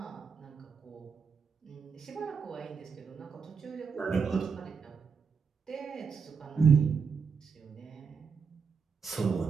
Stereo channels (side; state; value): left; quieter; 5.9 dB